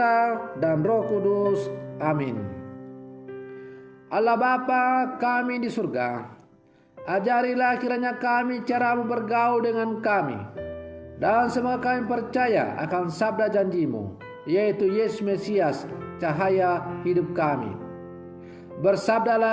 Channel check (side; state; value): both; identical; correlation 1.00